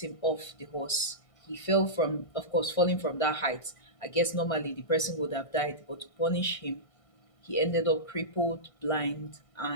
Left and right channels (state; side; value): late; right; 1.6 ms